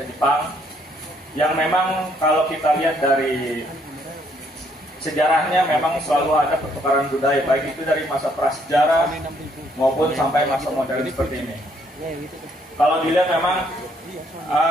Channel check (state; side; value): normal; both; correlation 0.69